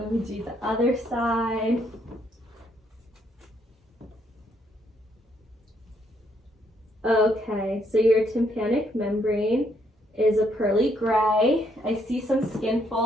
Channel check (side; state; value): both; normal; correlation 0.72